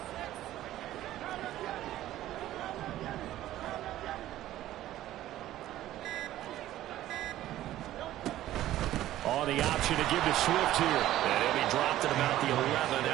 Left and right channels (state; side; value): quieter; left; 13.9 dB